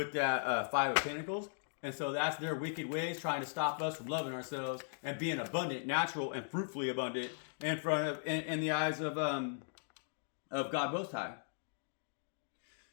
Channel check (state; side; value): silent; right; digital silence